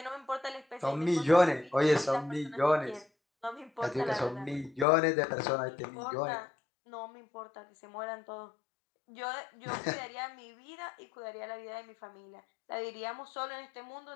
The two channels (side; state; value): right; drops out; at 4.9 s